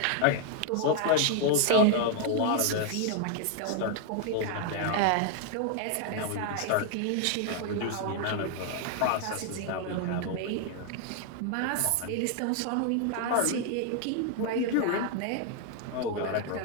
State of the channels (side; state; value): both; different; correlation 0.00